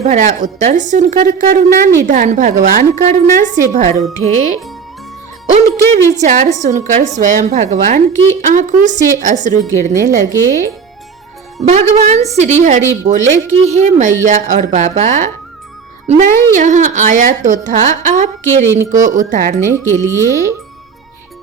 भरा उत्तर सुनकर करुणा निधान भगवान करुणा से भर उठे। उनके विचार सुनकर स्वयं भगवान की आंखों से अश्रु गिरने लगे। भगवान श्री हरि बोले कि हे मैया और बाबा, मैं यहाँ आया तो था आपके ऋण को उतारने के लिए,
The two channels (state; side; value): quieter; left; 6.0 dB